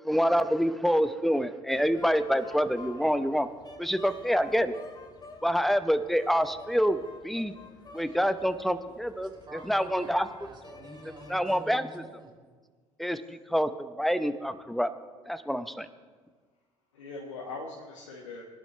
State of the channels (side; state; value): both; normal; correlation 0.95